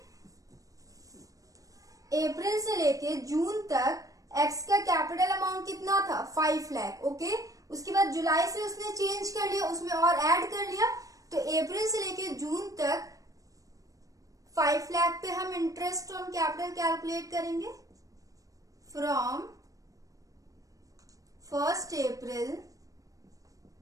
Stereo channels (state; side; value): late; left; 0.16 ms